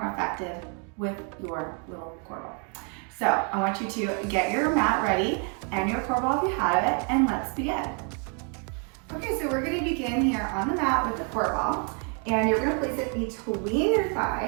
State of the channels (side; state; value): left; quieter; 38.3 dB